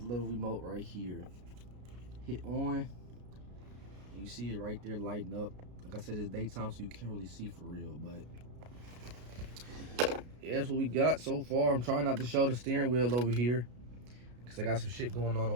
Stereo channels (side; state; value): left; late; 33 ms